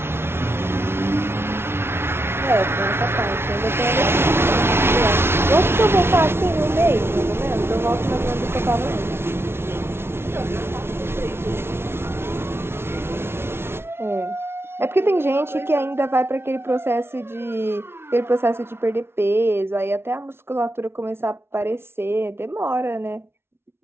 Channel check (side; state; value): left; late; 0.12 ms